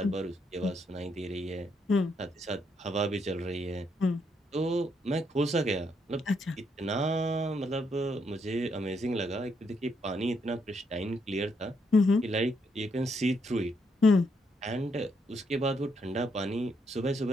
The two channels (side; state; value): both; normal; correlation 0.76